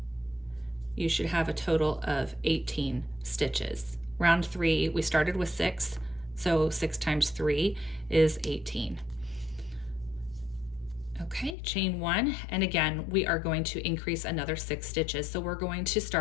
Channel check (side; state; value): right; drops out; at 11.6 s